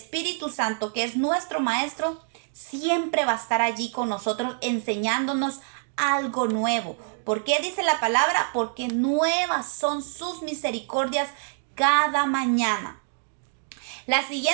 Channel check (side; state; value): left; silent; digital silence